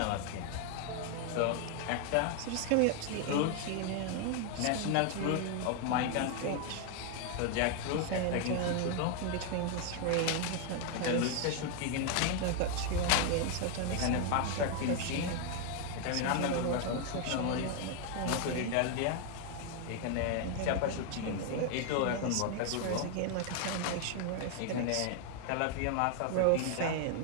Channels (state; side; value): different; both; correlation 0.01